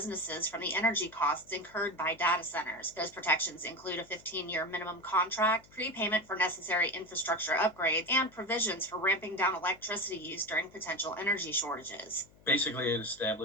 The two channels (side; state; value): left; noise; hum, 27 dB below the sound